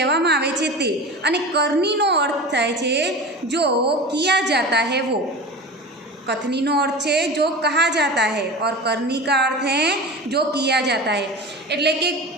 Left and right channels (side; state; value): both; normal; correlation 0.31